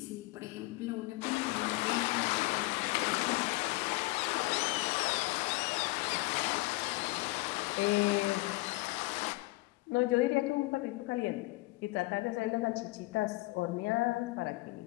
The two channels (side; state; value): right; quieter; 22.1 dB